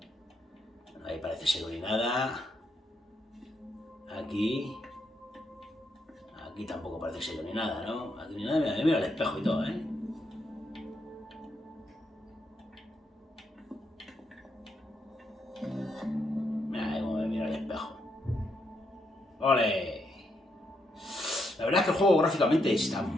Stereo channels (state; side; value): normal; both; correlation 0.79